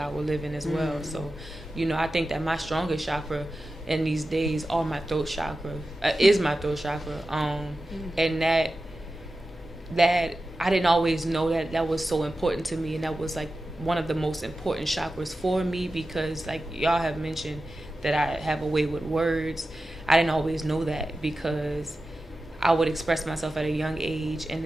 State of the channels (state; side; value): normal; both; correlation 0.93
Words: living as well. So, you know, I think that my strongest chakra in these days are my throat chakra, is my throat chakra. And that I didn't always know that was so important to me, and that was like one of the most important chakras for me, because like y'all have mentioned that I have a way with words. I didn't always know that, because I would express myself at a young age, and